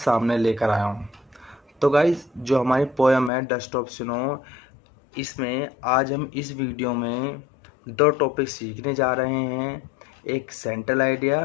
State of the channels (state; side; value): drops out; right; at 3.3 s